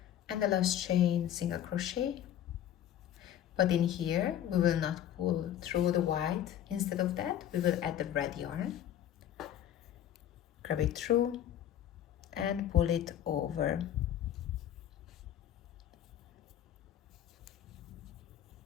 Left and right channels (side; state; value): right; quieter; 11.1 dB